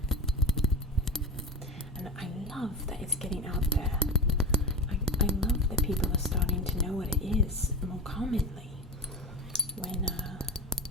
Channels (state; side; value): normal; both; correlation 0.27